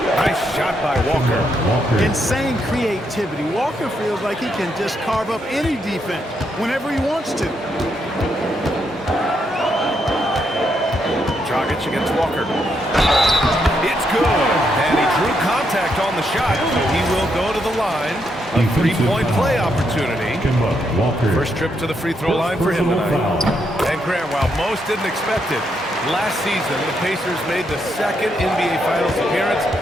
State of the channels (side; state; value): both; normal; correlation 0.78